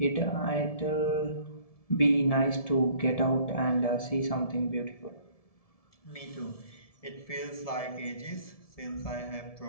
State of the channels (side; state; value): right; late; 1.7 ms